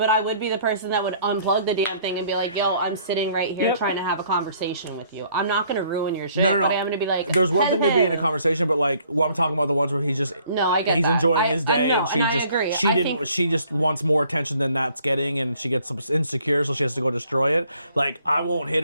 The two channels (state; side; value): inverted; both; correlation -0.61